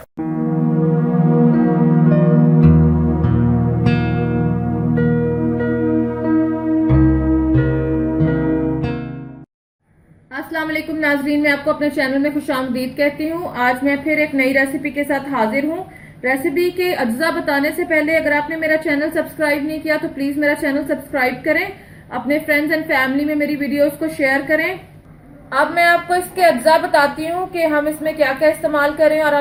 अस्सलाम वालेकुम नाजरीन, मैं आपको अपने चैनल में खुशामदीद कहती हूँ। आज मैं फिर एक नई रेसिपी के साथ हाजिर हूँ। रेसिपी के अज्जा बताने से पहले अगर आपने मेरा चैनल सब्सक्राइब नहीं किया तो प्लीज मेरा चैनल सब्सक्राइब करें, अपने फ्रेंड्स एंड फैमिली में मेरी वीडियोस को शेयर करें। अब मैं आपको इसके अज्जा बताती हूँ कि हम इसमें क्या क्या इस्तेमाल करें और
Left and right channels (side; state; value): both; identical; correlation 1.00